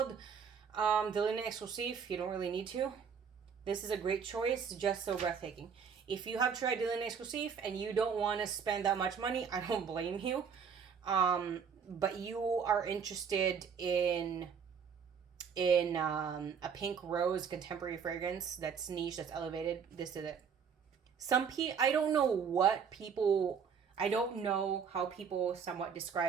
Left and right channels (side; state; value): left; quieter; 6.7 dB